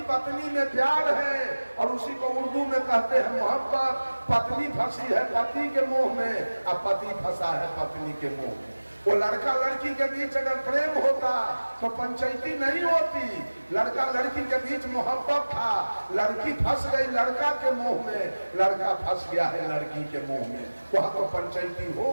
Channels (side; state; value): both; inverted; correlation -1.00